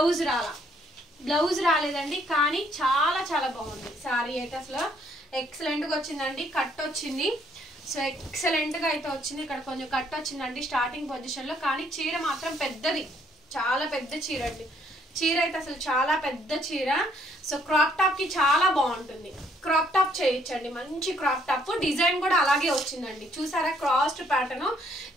రాలేదండి, కానీ చాలా చాలా బాగుంది శారీ అయితే. అసలు ఎక్సలెంట్ గా వచ్చిందండి. కట్ వచ్చింది, సో ఎక్సలెంట్ గా అయితే వచ్చింది. ఇక్కడ కొంచెం కట్ వచ్చిందండి స్టార్టింగ్ పొజిషన్ లో, కానీ చీర మాత్రం పెద్దది, చాలా పెద్ద చీర అండి. చీర అయితే అసలు చాలా పెద్ద చీర. సో క్రాప్ టాప్ కి చాలా బాగుంటుంది. క్రాప్ టాప్ చేయొచ్చండి, మంచి క్రాప్ టాప్. డిజైన్ కూడా అలాగే వచ్చిందండి, చూసారా? క్రాస్డ్ ప్యాటర్న్,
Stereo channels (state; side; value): normal; both; correlation 0.67